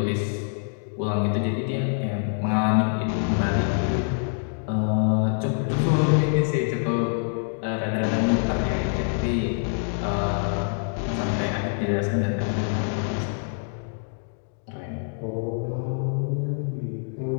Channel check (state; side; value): silent; right; 61 dB below the other